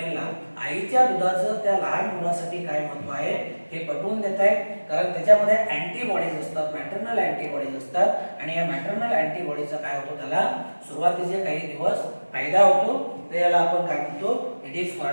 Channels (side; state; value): both; inverted; correlation -1.00